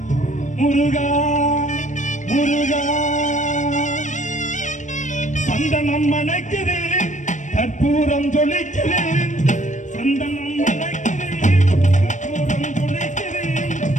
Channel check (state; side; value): late; right; 0.35 ms